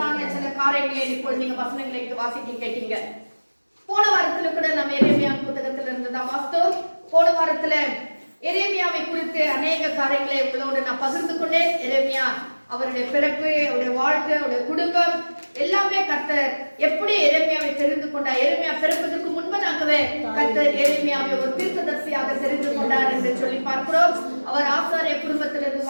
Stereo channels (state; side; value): inverted; both; correlation -1.00